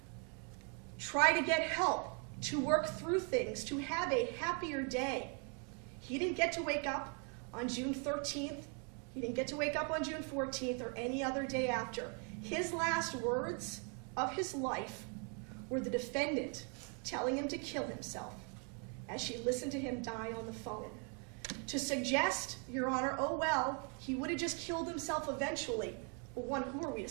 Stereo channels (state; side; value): quieter; left; 38.3 dB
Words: try to get help, to work through things, to have a happier day. He didn't get to wake up on June 13th. He didn't get to wake up on June 14th or any other day after. His last words of his life were the defendant telling him to kill himself as she listened to him die on the phone. To suggest, Your Honor, oh well, he would have just killed himself eventually. Well, one, who are we to